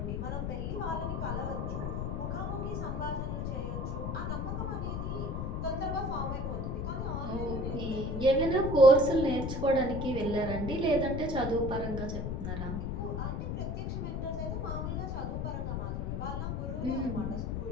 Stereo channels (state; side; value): noise; left; rumble, 2 dB below the sound